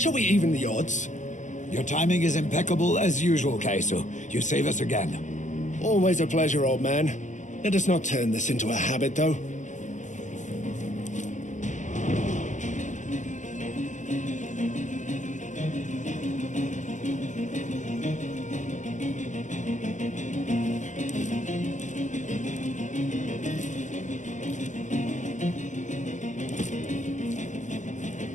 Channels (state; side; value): late; right; 0.36 ms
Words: we even the odds? Your timing is impeccable as usual, Kaiso. You save us again. Always a pleasure, old man. Let us not turn this into a habit, though.